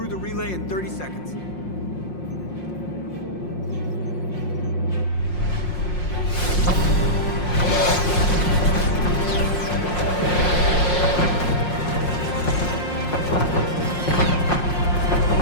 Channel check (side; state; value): right; late; 5.6 ms